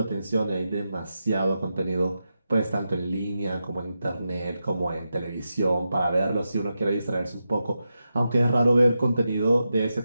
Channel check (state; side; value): inverted; both; correlation -0.89